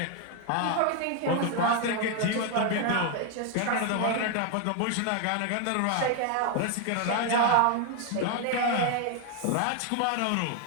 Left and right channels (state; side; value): different; both; correlation 0.01